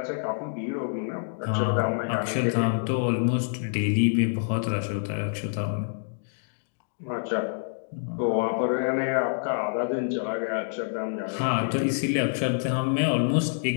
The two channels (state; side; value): silent; right; digital silence